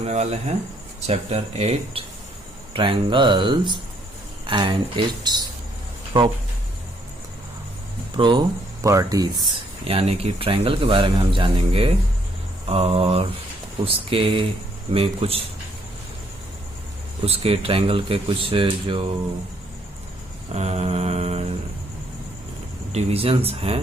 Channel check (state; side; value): normal; both; correlation 0.69